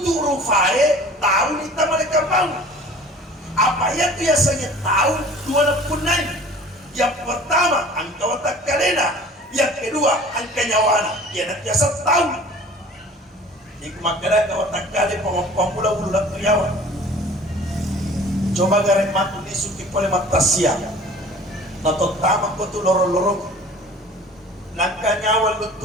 rupa tahu nita mereka mau. Apa yang biasanya tahu dua punai. Yang pertama angka watak kalena. Yang kedua angka nyawana ya nak biasa tahu iku makara ka otak kali pamula ulang kriawan coba garek matu disuki pole matasia nato tama ko tu loro-loro nangka nyawa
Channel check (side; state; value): both; normal; correlation 0.46